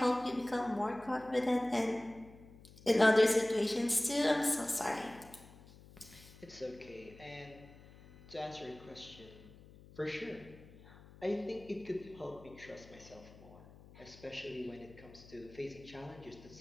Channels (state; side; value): noise; left; hum, 21 dB below the sound